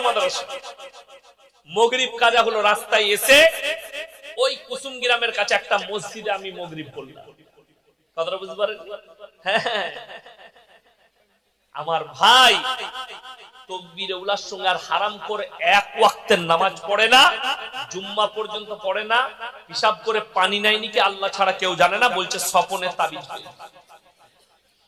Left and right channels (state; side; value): identical; both; correlation 1.00